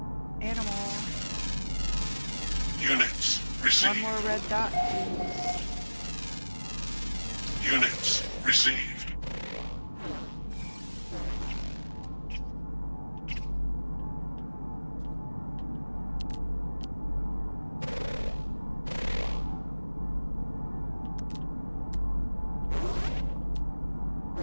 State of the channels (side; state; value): both; inverted; correlation -1.00